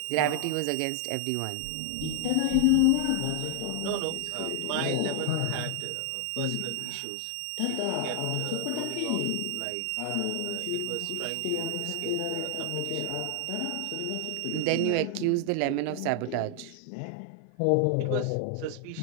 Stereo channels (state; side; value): different; both; correlation 0.00